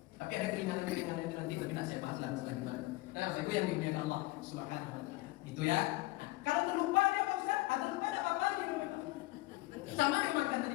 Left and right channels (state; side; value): quieter; right; 20.3 dB